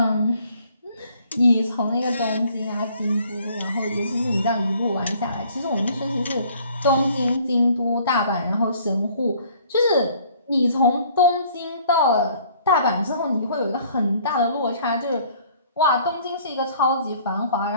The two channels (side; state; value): both; inverted; correlation -0.57